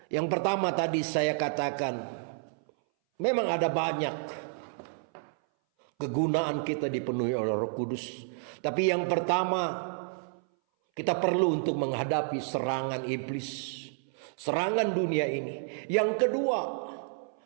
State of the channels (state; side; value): silent; left; 58 dB below the other